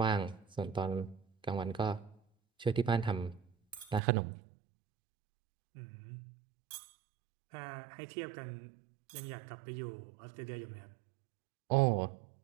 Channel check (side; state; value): left; drops out; at 4.0 s